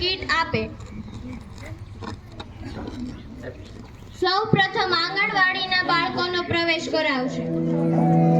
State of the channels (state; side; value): identical; both; correlation 1.00